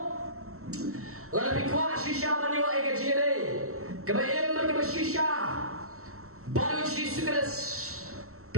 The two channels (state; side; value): late; left; 0.63 ms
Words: lalu kuasyo siapa ni wa ke jere kebayem ke shisha baru jisu keras